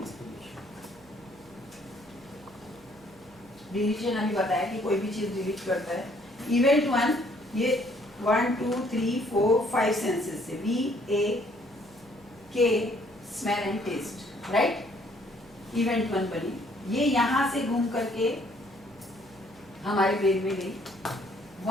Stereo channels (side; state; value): right; noise; hum, 26 dB below the sound